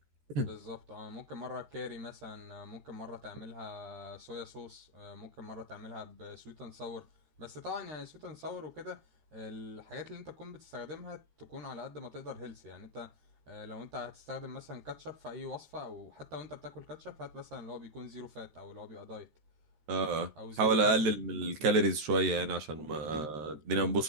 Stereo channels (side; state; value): left; late; 13 ms